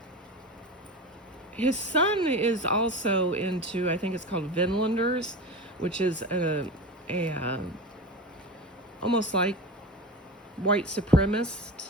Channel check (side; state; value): both; normal; correlation 0.28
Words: his son is also into, I think it's called Vinlanders, which is a almost like white supremacist